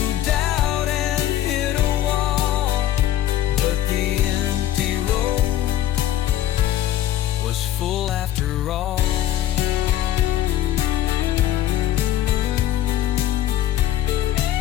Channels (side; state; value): right; quieter; 12.7 dB